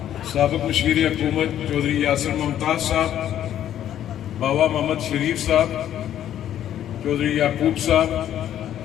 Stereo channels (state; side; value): quieter; right; 11.0 dB